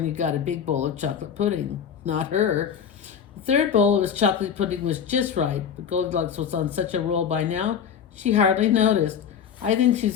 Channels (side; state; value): right; quieter; 7.9 dB